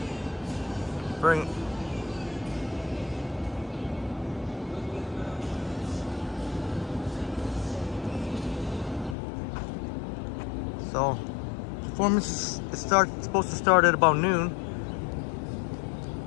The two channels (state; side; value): drops out; right; at 9.2 s